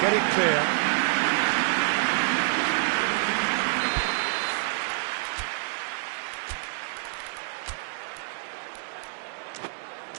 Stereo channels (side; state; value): left; silent; digital silence